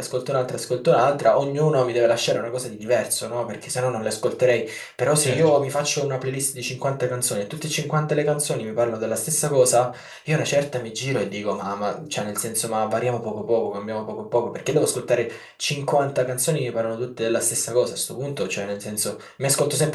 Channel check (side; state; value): both; identical; correlation 1.00